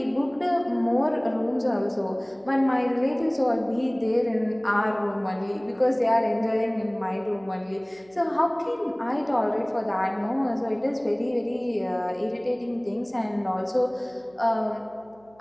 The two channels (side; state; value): right; noise; hum, 30 dB below the sound